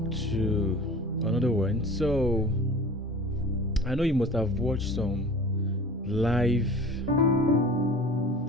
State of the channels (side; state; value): both; normal; correlation 0.41